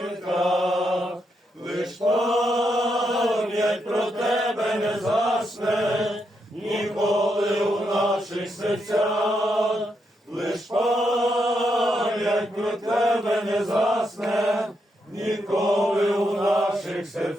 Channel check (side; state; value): both; normal; correlation 0.81